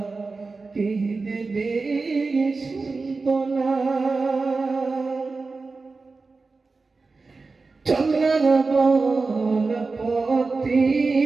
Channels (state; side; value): quieter; left; 4.0 dB